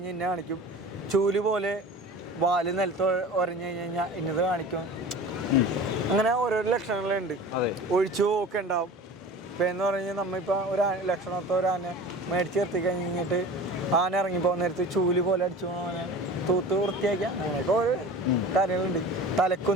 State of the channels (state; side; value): normal; both; correlation 0.38